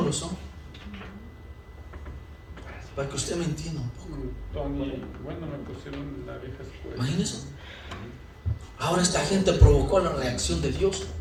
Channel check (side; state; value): both; identical; correlation 1.00